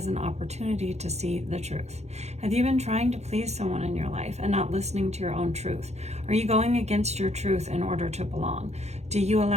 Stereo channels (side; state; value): left; late; 0.32 ms